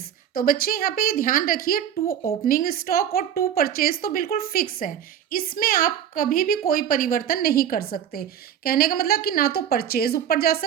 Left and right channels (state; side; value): quieter; left; 9.5 dB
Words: तो बच्चे यहाँ पे ध्यान रखिए, टू ओपनिंग स्टॉक और टू परचेज तो बिल्कुल फिक्स है, इसमें आप कभी भी कोई परिवर्तन नहीं कर सकते। कहने का मतलब कि ना तो परचेज ऊपर जा